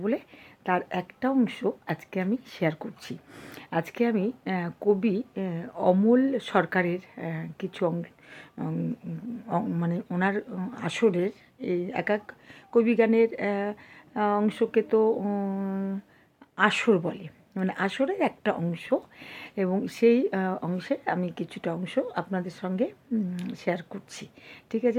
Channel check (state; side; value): identical; both; correlation 1.00